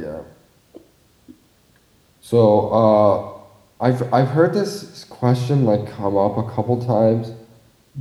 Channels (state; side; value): identical; both; correlation 1.00